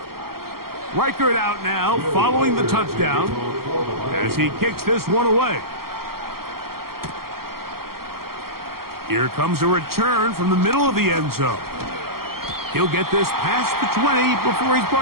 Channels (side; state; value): left; late; 0.93 ms